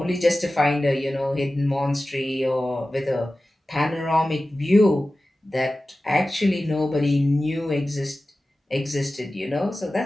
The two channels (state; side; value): normal; both; correlation 0.95